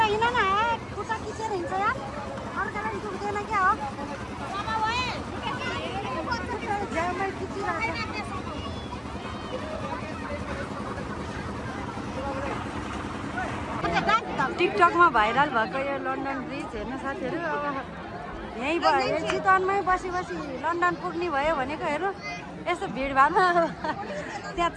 हिँड न, खुट्टा खिचेर हिँड्छ यार, अर्कालाई दुख्दैन क्या हो। झ्याउमै खिचिरहेको टिकटकमा भाइरल भएको यो लन्डन ब्रिज हेर्नु साथीहरू। अब यहीँ भयो चितवनमै बसी बसी लन्डन पुग्ने भयो भनेको हेर्नु, यस्तो भिडभाडमा त्यहाँ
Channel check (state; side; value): identical; both; correlation 1.00